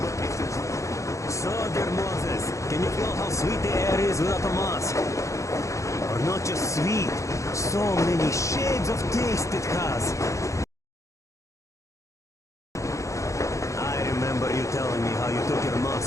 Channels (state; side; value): late; right; 0.15 ms